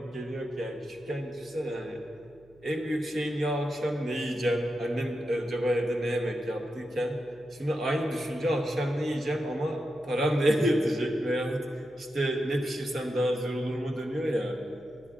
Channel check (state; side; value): noise; right; hum, 28 dB below the sound